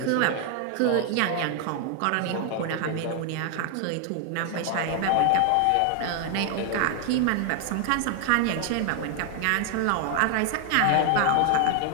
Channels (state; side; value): different; both; correlation 0.00